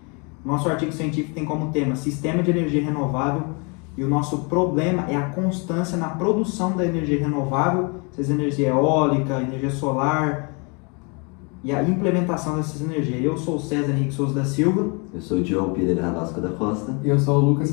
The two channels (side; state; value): right; quieter; 32.7 dB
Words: Nosso artigo científico tem como tema Sistema de Energia Renovável e o nosso problema é a constância na produção da energia renovável, seja energia eólica, energia solar e a implementação dessas energias. Eu sou o César Henrique Souza da Silva. Eu sou o Diogo Pereira Rabasco da Costa. E eu sou o Lucas